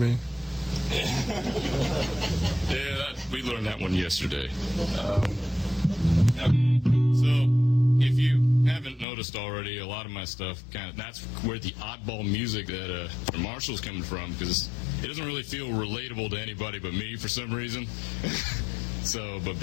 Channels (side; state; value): right; drops out; at 9.1 s